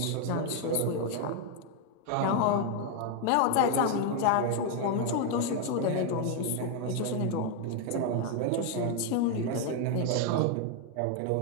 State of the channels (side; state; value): both; different; correlation 0.01